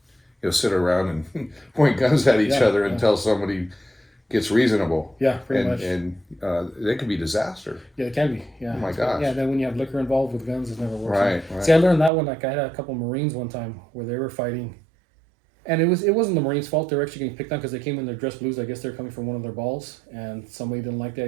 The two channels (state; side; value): drops out; left; at 12.1 s